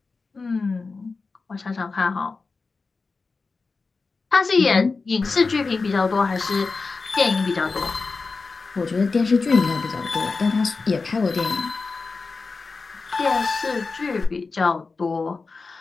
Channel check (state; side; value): quieter; right; 4.2 dB